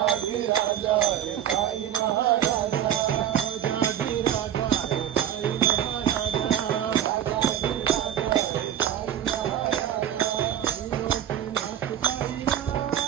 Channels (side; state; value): left; quieter; 10.5 dB